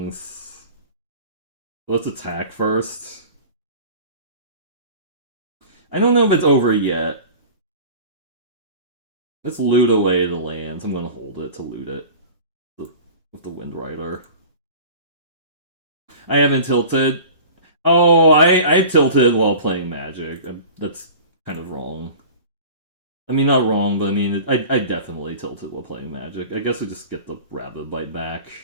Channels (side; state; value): both; inverted; correlation -0.39